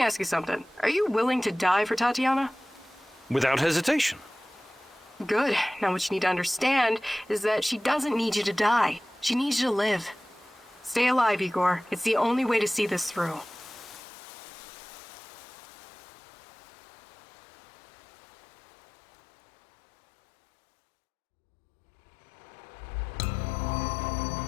ask you something. Are you willing to die for Tatyana? Without hesitation. Good. Now what you need to understand is that she doesn't need you to die. She needs you to live. Stay alive, Igor. It's the only way to see this through.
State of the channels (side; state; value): right; drops out; at 14.0 s